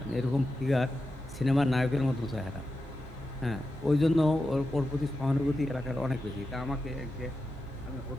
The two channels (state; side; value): normal; both; correlation 0.90